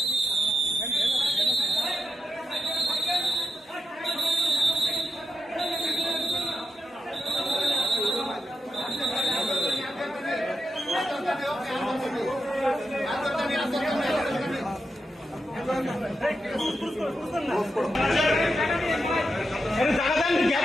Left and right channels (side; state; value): both; normal; correlation 0.87